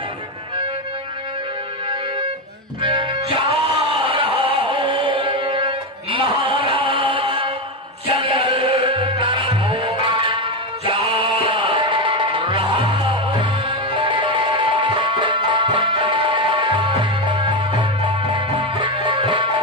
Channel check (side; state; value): both; normal; correlation 0.12